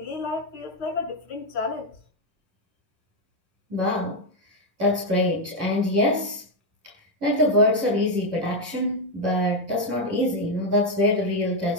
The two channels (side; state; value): left; late; 11 ms